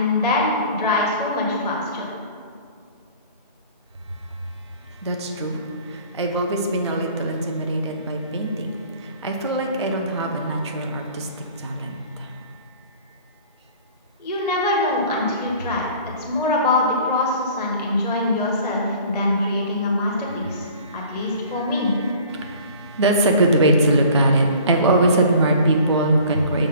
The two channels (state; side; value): inverted; both; correlation -0.47